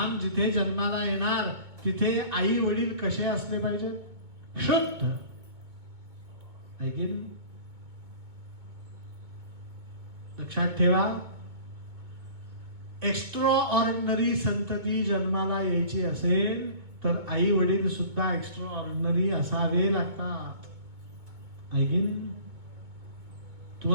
जिथे जन्माला येणार तिथे आई वडील कसे असले पाहिजे, शुद्ध. लक्षात ठेवा, एक्स्ट्रा ऑर्डिनरी संतती जन्माला यायची असेल तर आई वडील सुद्धा एक्स्ट्रा ऑर्डिनरी असावे लागतात. आहे की नाही?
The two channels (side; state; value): left; late; 2.2 ms